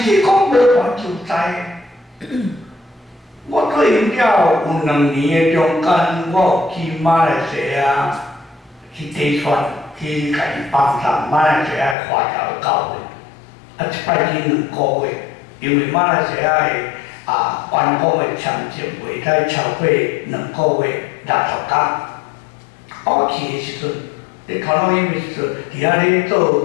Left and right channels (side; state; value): right; drops out; at 12.0 s